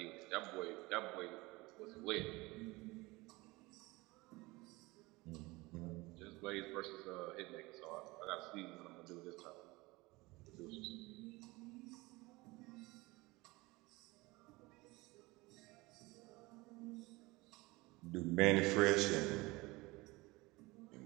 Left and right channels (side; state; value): left; quieter; 22.3 dB